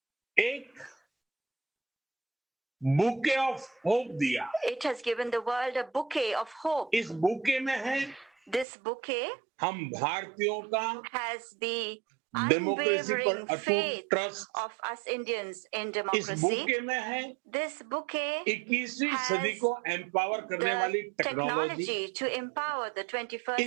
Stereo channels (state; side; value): drops out; left; at 8.7 s